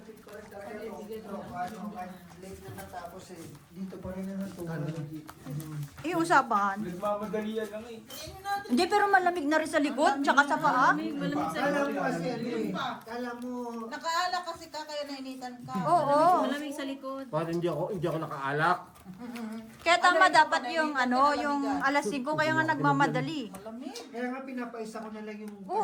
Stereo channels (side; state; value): both; identical; correlation 1.00